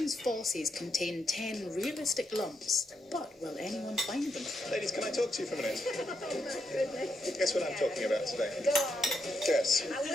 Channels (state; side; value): normal; both; correlation 0.81